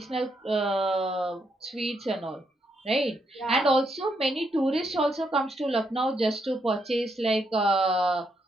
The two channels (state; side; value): normal; both; correlation 0.78